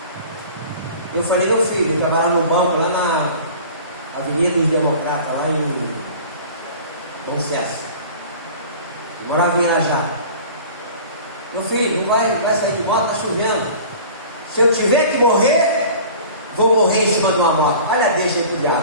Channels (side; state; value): both; inverted; correlation -0.42